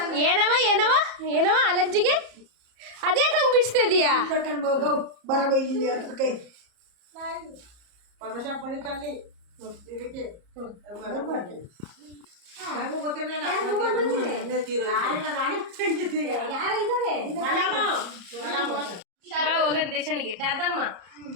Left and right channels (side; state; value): left; late; 34 ms